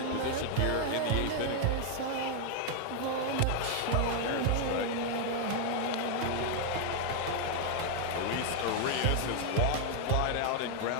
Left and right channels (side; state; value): both; different; correlation 0.00